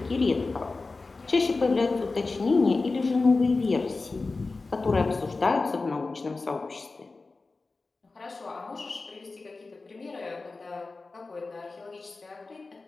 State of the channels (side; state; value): right; quieter; 3.7 dB